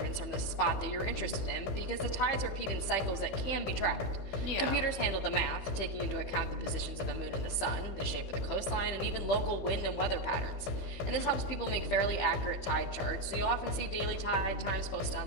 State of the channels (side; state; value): right; late; 15 ms